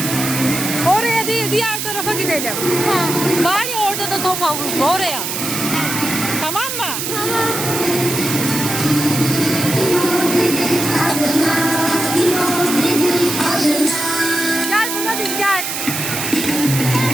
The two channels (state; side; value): noise; right; hiss, 3 dB below the sound